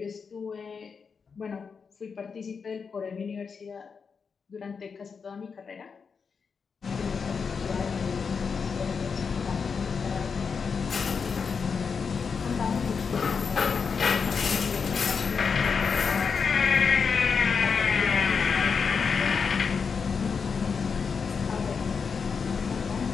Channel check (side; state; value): right; quieter; 5.7 dB